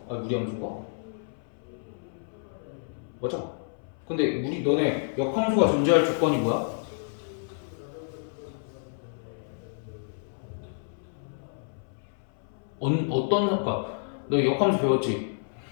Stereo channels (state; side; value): silent; right; 58 dB below the other